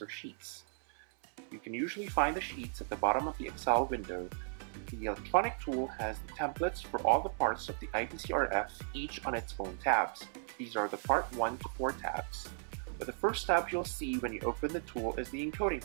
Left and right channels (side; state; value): left; silent; 54 dB below the other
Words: sheets. You can usually find the sheets at the bottom of the Excel window. The electronic tool has the templates for all the parts of the IPCRF, each on its own tabs. These are the Part 1 to 4 tabs. But the first tab you'll see when you open the tool is the Encoding